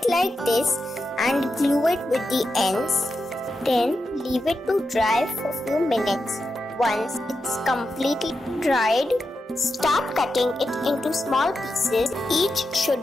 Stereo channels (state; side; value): normal; both; correlation 0.88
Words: like this and glue it with the ends. Then leave it to dry for a few minutes. Once it's completely dried, start cutting it into small pieces. Each should